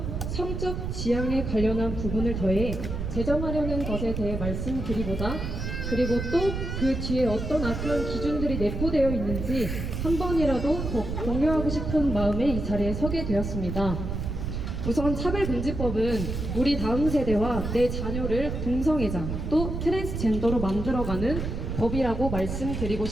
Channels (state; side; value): noise; right; rumble, 4 dB below the sound